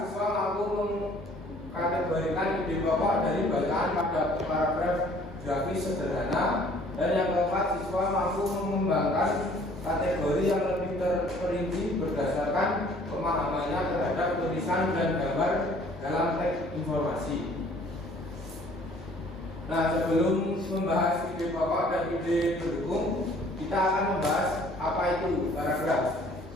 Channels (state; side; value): normal; both; correlation 0.56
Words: siswa mampu mengkategorikan ide pokok dari bacaan pada paragraf grafis sederhana. Dan yang keempat, siswa mampu mengembangkan kategori yang lebih terperinci berdasarkan pemahamannya terhadap tulisan dan gambar dalam teks informasi. Nah, sebelum membahas ide pokok dan ide pendukung, kita akan membahas apa itu paragraf.